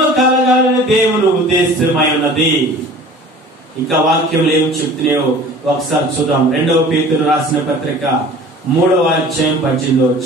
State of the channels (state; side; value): normal; both; correlation 0.44